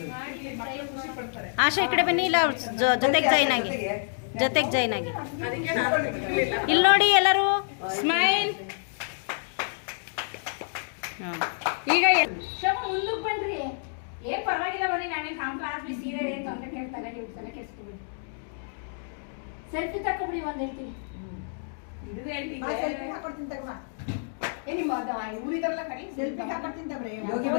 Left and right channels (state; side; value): silent; right; digital silence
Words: ಆಶಾ ಈ ಕಡೆ ಬನ್ನಿ. ಇಲ್ಲ ಜೊತೆಗೆ ಜಾಯ್ನ್ ಆಗಿ, ಜೊತೆಗೆ ಜಾಯ್ನ್ ಆಗಿ. ಇಲ್ಲಿ ನೋಡಿ ಎಲ್ಲರೂ. ಸ್ಮೈಲ್. ಹಾಂ ಈಗ ಶಮ ಮುಂದಕ್ಕೆ ಬನ್ರಿ. ಏನ್ ಪರವಾಗಿಲ್ಲ ಬನ್ನಿ. ನಾನೇನು ಕಾಂಪ್ಲಾಸ್ ಸೀರೆ ಏನು ತೊಂದರೆ ಕೇಳ್ತಾನೆ, ನೀವು ತಲೆ ಕೆಡಿಸ್ಕೊಬಿಡಿ. ಸೆಲ್ಫಿ ತಕೊಬಿಡಿ ಒಂದು ಹೇಳ್ತೀನಿ. ಸೆಲ್ಫಿ ಹಾಕೊಡ್ತೀನಿ ತಗೋ. ನಿಮ್ಮ ಊರಿದರಲ್ಲ ಕಡೆ ಸೆಲ್ಫಿ ಹಾಕೊಡ್ತೀನಿ ತಗೊಳ್ರಿ.